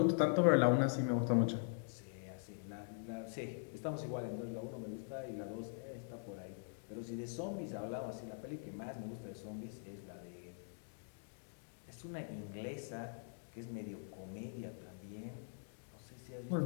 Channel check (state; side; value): silent; right; digital silence